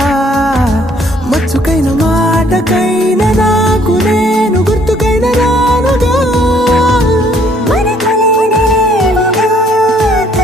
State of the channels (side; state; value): both; normal; correlation 0.63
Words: మచ్చుకైన మాటకైన నాకు నేను గుర్తుకైన రానుగా మనకులేనిదేమోగా